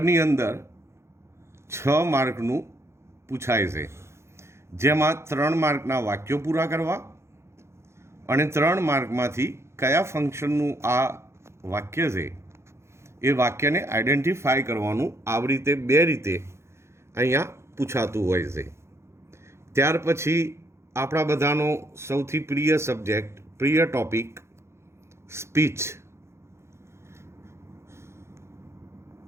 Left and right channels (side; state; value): left; late; 0.13 ms